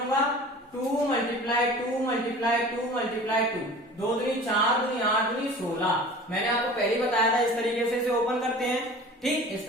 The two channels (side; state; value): both; normal; correlation 0.41